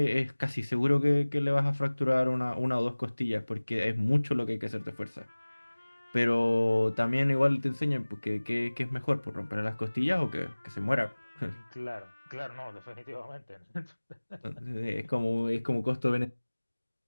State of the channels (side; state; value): both; inverted; correlation -1.00